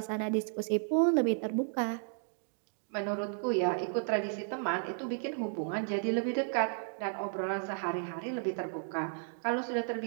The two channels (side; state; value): left; silent; digital silence